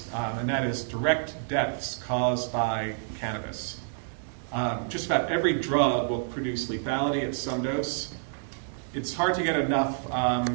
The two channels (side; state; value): left; silent; digital silence